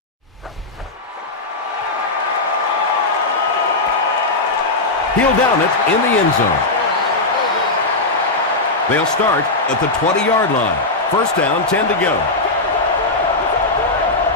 He'll down it in the end zone. They'll start at the 20-yard line. First down, 10 to go.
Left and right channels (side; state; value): right; quieter; 3.1 dB